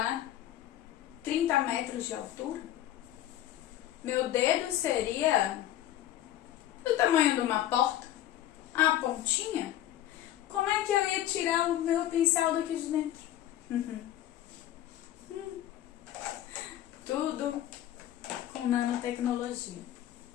30 metros de altura. Meu dedo seria do tamanho de uma porta, a pontinha. Como é que eu ia tirar o meu pincel daqui de dentro? Tudo com nanotecnologia.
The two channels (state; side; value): quieter; right; 12.7 dB